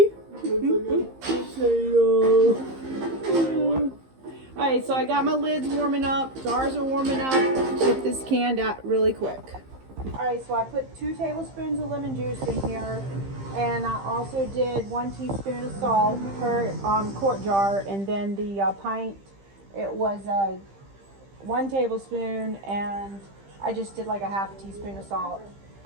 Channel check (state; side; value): late; left; 15 ms